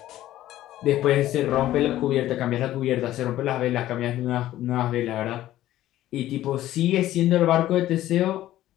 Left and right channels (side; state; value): right; quieter; 14.1 dB